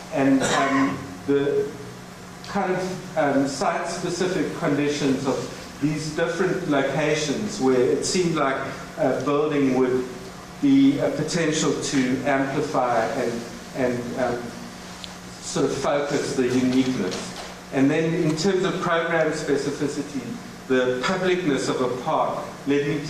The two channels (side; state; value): both; identical; correlation 1.00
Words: And the kind of site-specific conditions of these different locations where it seemed like a building would be a potential to amplify and sort of focus the uniqueness. And then in terms of program specificity, the publicness of a park led me